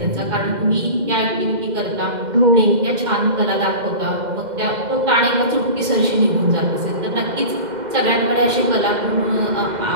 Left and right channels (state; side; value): late; left; 2.1 ms